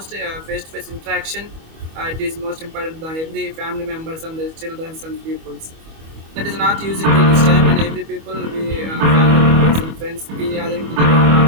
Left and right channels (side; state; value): left; late; 25 ms